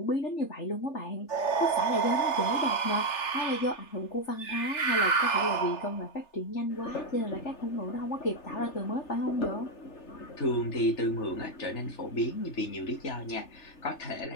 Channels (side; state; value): right; late; 3.4 ms